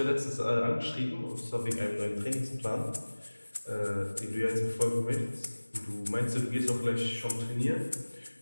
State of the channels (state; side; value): inverted; both; correlation -1.00